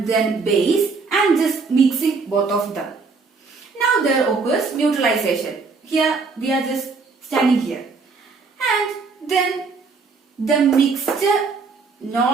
then base and just mixing both of them. Now there occurs neutralization. Here we are just standing here. And then the mixture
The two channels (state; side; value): quieter; left; 4.5 dB